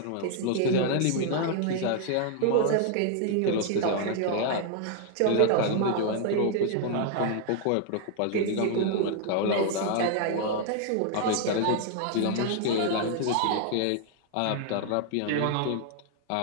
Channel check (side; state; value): both; different; correlation 0.00